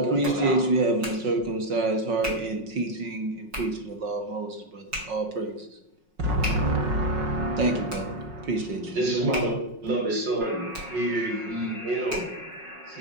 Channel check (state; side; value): late; left; 5.5 ms